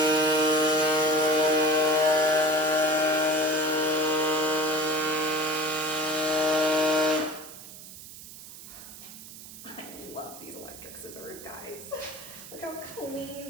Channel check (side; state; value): right; noise; hiss, 15 dB below the sound